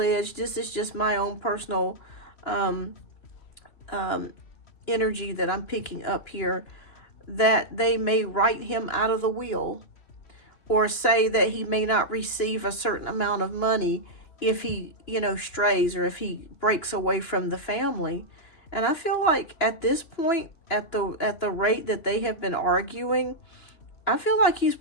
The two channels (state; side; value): late; right; 2.9 ms